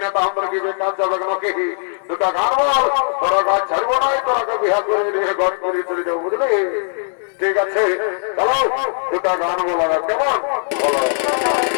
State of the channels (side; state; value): right; silent; 67 dB below the other